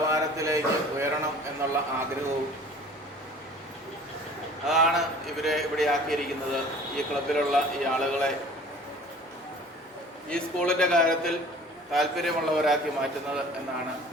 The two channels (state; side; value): normal; both; correlation 0.47